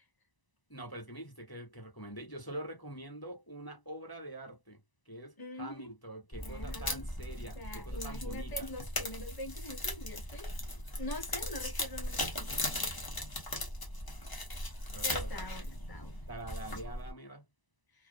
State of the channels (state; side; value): late; right; 1.0 ms